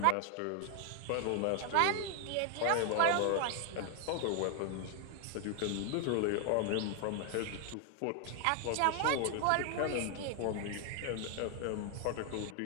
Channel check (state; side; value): different; both; correlation 0.00